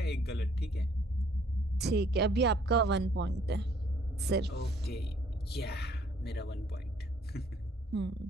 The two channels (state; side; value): normal; both; correlation 0.62